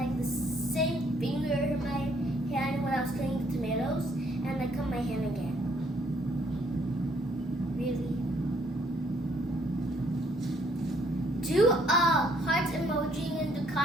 the same finger in my hand when I was cutting the tomatoes, and I cut my hand again. Really? Do a heart emoji in the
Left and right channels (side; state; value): both; normal; correlation 0.66